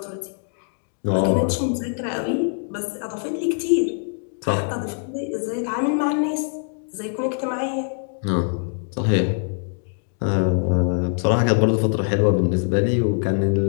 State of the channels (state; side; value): silent; right; 60 dB below the other